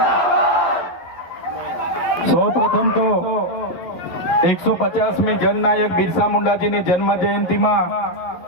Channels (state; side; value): late; right; 11 ms